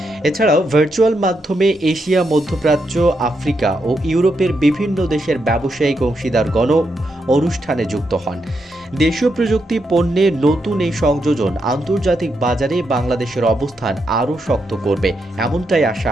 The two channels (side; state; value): both; normal; correlation 0.82